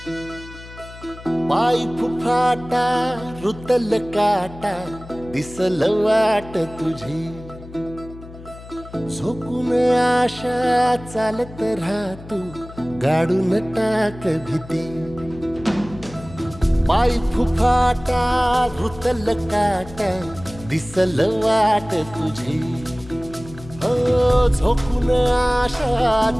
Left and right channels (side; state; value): left; noise; hum, 17 dB below the sound